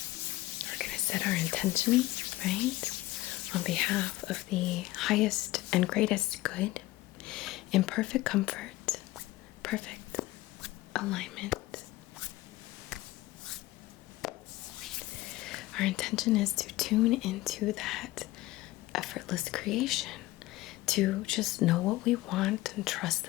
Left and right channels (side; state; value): right; quieter; 18.0 dB